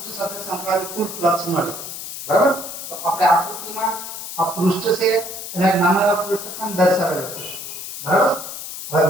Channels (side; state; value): left; noise; hiss, 9 dB below the sound